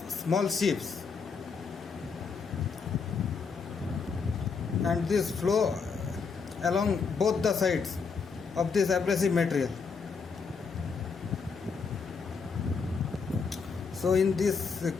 small chips, and this flow along both the sides of this abrasive material. So in this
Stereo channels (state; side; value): quieter; right; 5.3 dB